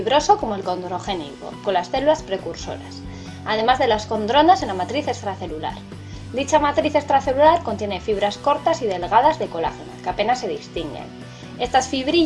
como el condrogénico, con las células precursoras, además de las condronas en la matriz extracelular. Dicha matriz extracelular contiene fibras cortas y delgadas de colágeno, que apenas se distinguen. Estas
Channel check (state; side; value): identical; both; correlation 1.00